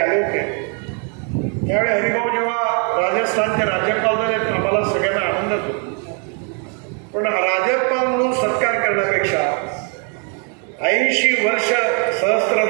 होते. त्यावेळी हरिभाऊ जेव्हा राजस्थानचे राज्यपाल झाले आम्हाला सगळ्यांना आनंदच होतो. पण राज्यपाल म्हणून सत्कार करण्यापेक्षा 80 वर्ष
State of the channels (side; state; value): left; quieter; 39.1 dB